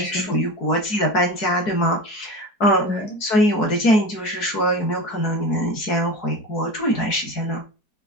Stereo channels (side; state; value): right; late; 4.7 ms